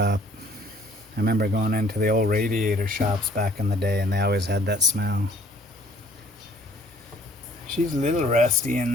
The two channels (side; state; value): both; normal; correlation 0.58